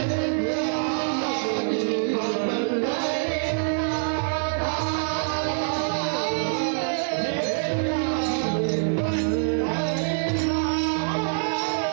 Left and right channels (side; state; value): left; silent; 56 dB below the other